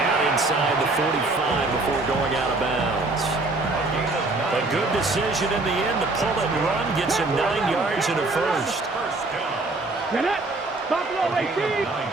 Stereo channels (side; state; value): left; quieter; 3.1 dB